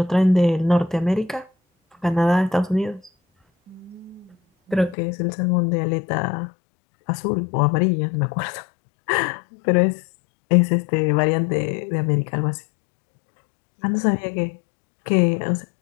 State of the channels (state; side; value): drops out; right; at 5.0 s